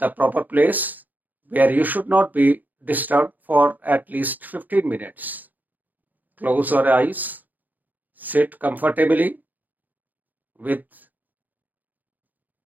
proper place where you should not be disturbed for at least 15 minutes. Close your eyes, sit comfortably with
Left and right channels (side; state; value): left; late; 0.083 ms